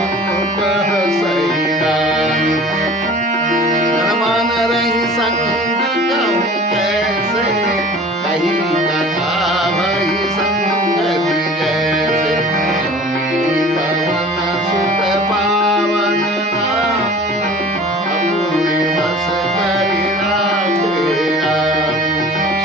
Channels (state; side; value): normal; both; correlation 0.43